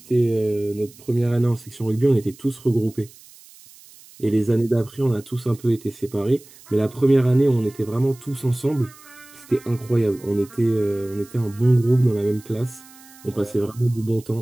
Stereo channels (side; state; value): right; noise; hiss, 23 dB below the sound